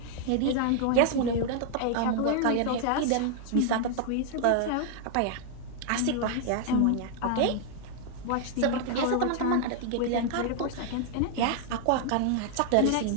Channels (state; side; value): different; both; correlation 0.00